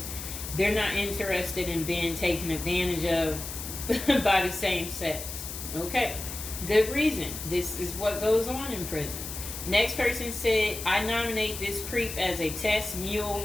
they're not interested in being taken advantage of by the same sex. Okay, good reason. This is what goes on in prison. Next person said, I nominate this creep as a test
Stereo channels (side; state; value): left; noise; hiss, 8 dB below the sound